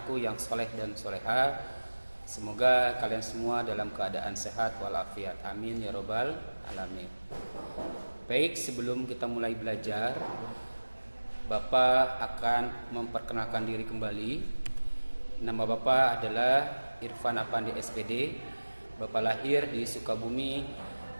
yang soleh dan soleha. Semoga kalian semua dalam keadaan sehat walafiat. Amin ya robbal alamin. Baik, sebelum kita mulai belajar, Bapak akan memperkenalkan diri kembali. Nama Bapak adalah Irfan Apandi SPD. Bapak lahir di Sukabumi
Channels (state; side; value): inverted; both; correlation -1.00